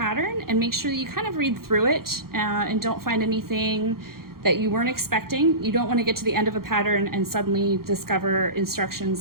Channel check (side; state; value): left; late; 0.93 ms